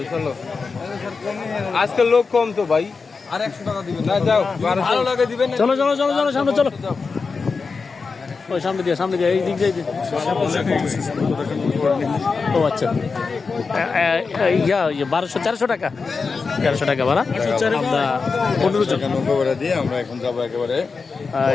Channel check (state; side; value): quieter; right; 4.7 dB